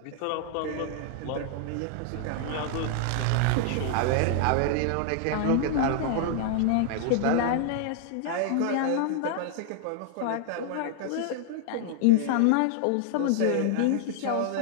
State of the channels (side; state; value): both; different; correlation 0.00